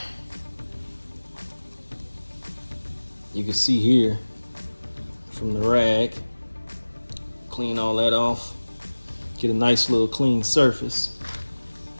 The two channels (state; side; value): inverted; both; correlation -1.00